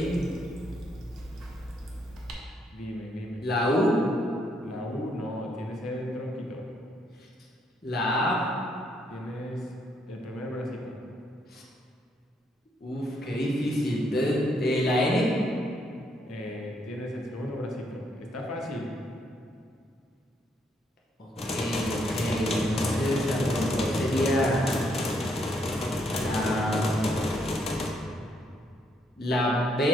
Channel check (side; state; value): both; normal; correlation 0.73